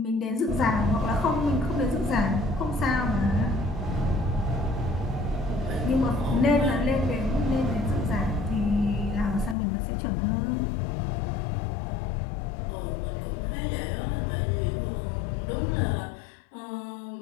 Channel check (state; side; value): drops out; right; at 9.6 s